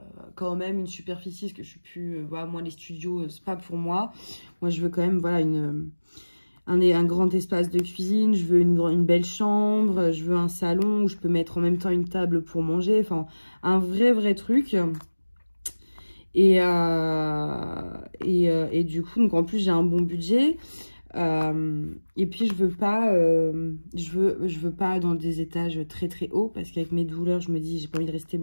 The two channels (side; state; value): both; inverted; correlation -1.00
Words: quand même une superficie, parce que je suis plus... voilà, moi, les studios, c'est pas pour moi. Moi, je veux quand même, voilà, un grand espace de cuisine. Je veux une belle chambre. Je veux un salon où je peux mettre en même temps une table pour manger. Enfin, un vrai truc. Et du coup, donc en plus, j'ai un bon budget. Et puis je veux pas dans des étages très hauts parce qu'avec mes douleurs je me dis j'ai pas envie de rester